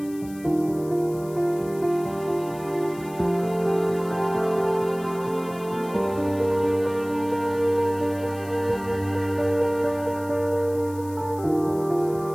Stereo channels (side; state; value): left; noise; hiss, 21 dB below the sound